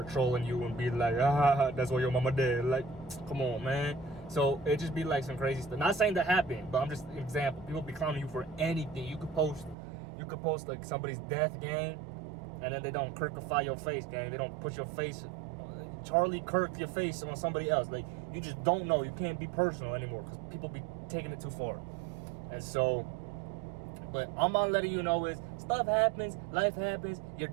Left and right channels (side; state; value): left; drops out; at 9.8 s